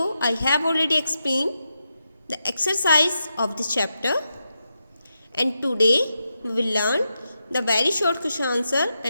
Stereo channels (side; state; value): both; inverted; correlation -0.86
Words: I have already explained the exercise of this chapter, and today we will learn the very short question answer